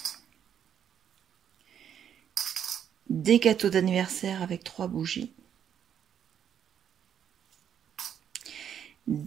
Des gâteaux d'anniversaire avec 3 bougies.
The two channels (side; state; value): left; quieter; 9.0 dB